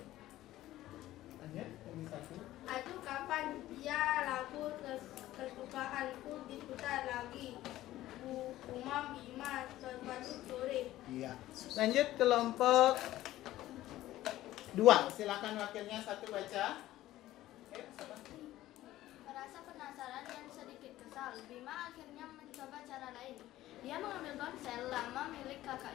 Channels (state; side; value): quieter; right; 15.1 dB